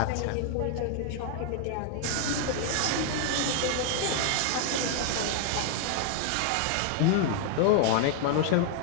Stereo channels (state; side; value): different; both; correlation 0.00